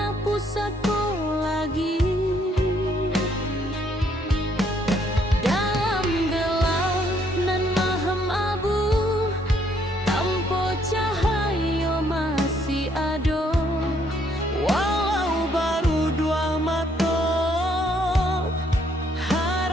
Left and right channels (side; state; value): both; normal; correlation 0.68